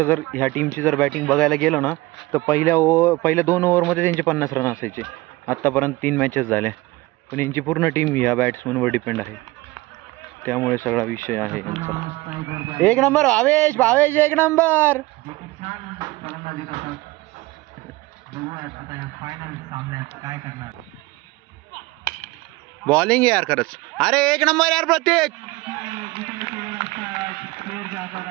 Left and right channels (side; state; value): left; quieter; 20.7 dB